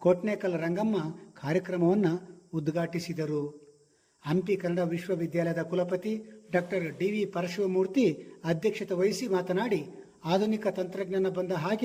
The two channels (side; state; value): both; identical; correlation 1.00